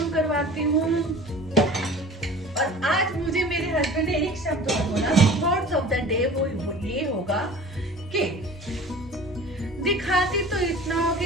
करवाती हूँ। और आज मुझे मेरे हस्बैंड ने एक शब्द और बोला, थॉट्स ऑफ द डे, वो ये होगा कि दिखाती तो इतना हो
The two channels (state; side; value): normal; both; correlation 0.42